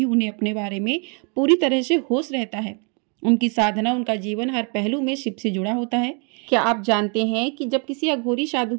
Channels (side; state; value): left; quieter; 36.0 dB